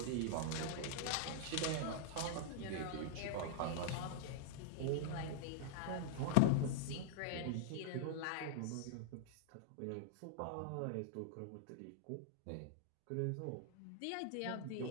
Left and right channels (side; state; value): both; different; correlation 0.00